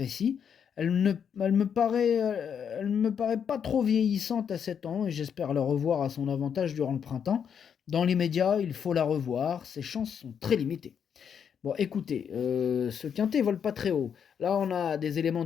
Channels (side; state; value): right; quieter; 7.6 dB